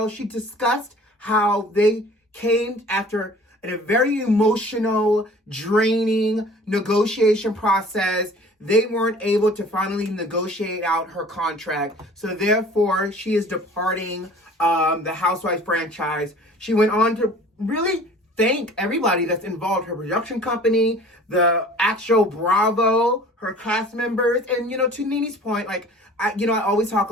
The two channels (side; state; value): both; normal; correlation 0.47